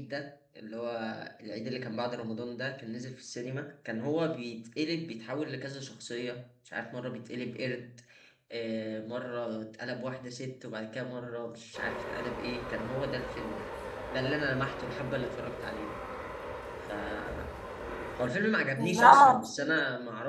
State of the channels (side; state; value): both; identical; correlation 1.00